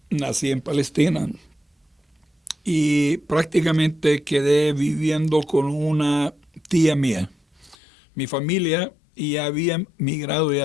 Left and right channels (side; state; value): right; drops out; at 7.8 s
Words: nací en Palestina y prácticamente quedé viviendo con una tía mía. Mi familia ya habían migrado y